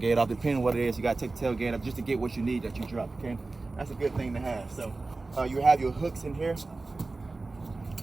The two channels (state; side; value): quieter; left; 3.5 dB